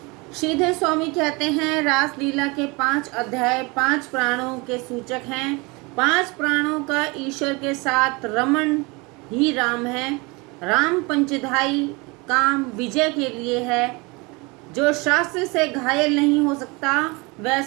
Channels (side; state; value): left; quieter; 26.8 dB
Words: श्रीधर स्वामी कहते हैं, रास लीला के 5 अध्याय 5 प्राणों के सूचक हैं। 5 प्राणों का ईश्वर के साथ रमण ही राम है। राम पंचधाई काम विजय के लिए है। जो शास्त्र से घायल नहीं हो सकता,